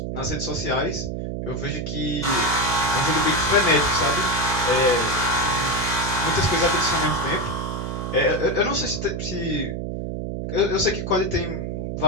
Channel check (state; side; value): noise; right; hum, 4 dB below the sound